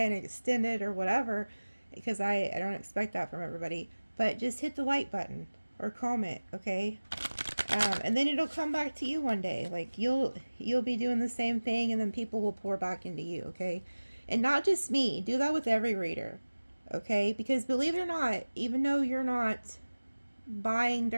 extended or whatever, because I don't expect that from everybody, but just hit the like button or comment, okay? And then it'll come back to you one day. Like you'll be doing the same thing, and then people will pour back into you, okay? And not just me. Do that with every reader, okay? Because believe it or not, even though you're not buying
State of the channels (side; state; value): both; inverted; correlation -1.00